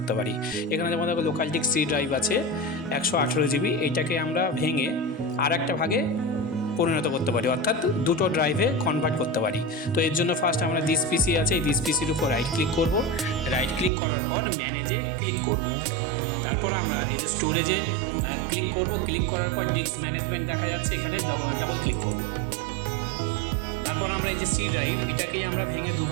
পারি। এখানে যেমন দেখো লোকাল ডিস্ক সি ড্রাইভ আছে 118 জিবি, এইটাকে আমরা ভেঙে আর একটা ভাগে পরিণত করতে পারি, অর্থাৎ দুটো ড্রাইভে কনভার্ট করতে পারি। তো এর জন্য ফার্স্ট আমরা দিস পিসি আছে, এই দিস পিসির উপর রাইট ক্লিক করব। রাইট ক্লিক করার পর ম্যানেজে ক্লিক করব। তারপর আমরা এই যে স্টোরেজে ক্লিক করব। ক্লিক করার পর ডিস্ক ম্যানেজমেন্ট দেখা যাচ্ছে, এখানে ডাবল ক্লিক করব। তারপর আমরা এই যে সি ড্রাইভ, এটাকেই আমরা ভেঙে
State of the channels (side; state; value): left; drops out; at 13.9 s